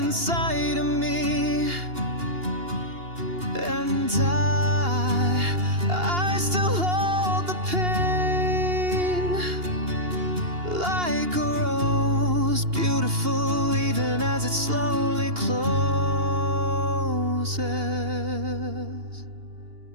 of me. And I still hold the pain like a rose, beautiful even as it slowly closes.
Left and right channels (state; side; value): late; left; 2.8 ms